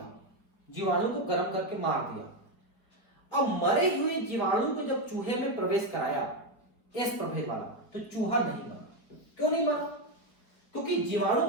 जीवाणु को गर्म करके मार दिया। अब मरे हुए जीवाणु को जब चूहे में प्रवेश कराया, एस प्रभेद वाला, तो चूहा नहीं मरा। क्यों नहीं मरा? क्योंकि जीवाणु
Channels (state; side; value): late; right; 4.8 ms